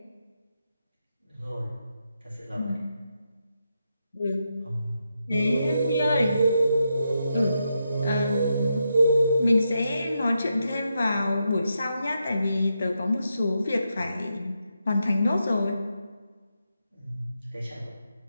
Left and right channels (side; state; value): both; inverted; correlation -0.84